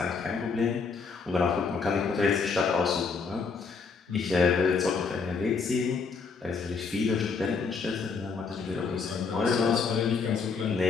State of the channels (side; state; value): right; quieter; 5.0 dB